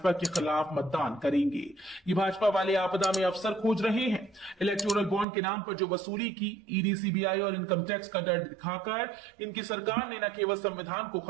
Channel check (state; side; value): drops out; left; at 5.2 s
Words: के खिलाफ मतदान करेंगे। ये भाजपा वाले आपदा में अवसर खोज रहे हैं। इलेक्टोरल बॉन्ड के नाम पर जो वसूली की, ईडी, सीबीआई और इनकम टैक्स का डर दिखाकर इनकी सरकार ने न केवल संविधान को